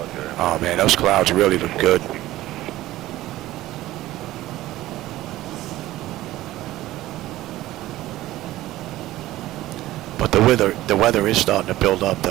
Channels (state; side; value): quieter; left; 15.9 dB